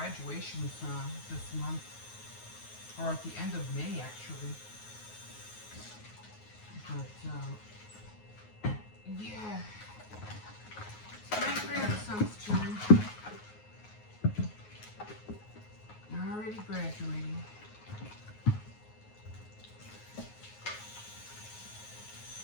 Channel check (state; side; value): late; right; 9.5 ms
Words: this month, or at the end of May actually. But yeah. My grandson's turn. Already graduating.